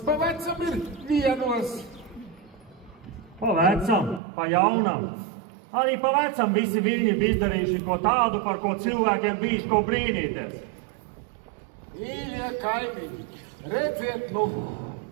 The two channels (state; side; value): drops out; left; at 4.2 s